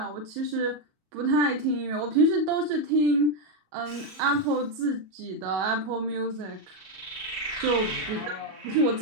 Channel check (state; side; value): late; left; 37 ms